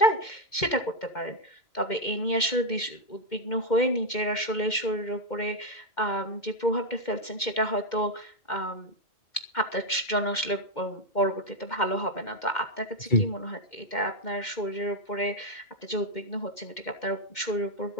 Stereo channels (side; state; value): right; late; 2.1 ms